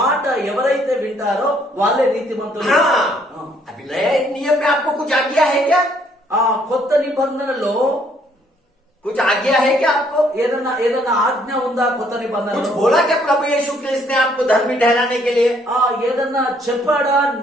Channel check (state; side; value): normal; both; correlation 0.66